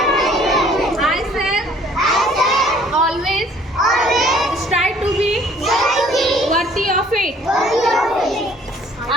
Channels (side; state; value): both; normal; correlation 0.57